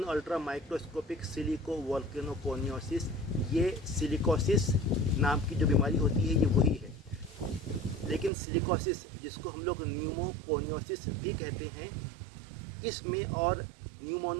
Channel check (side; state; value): left; drops out; at 8.3 s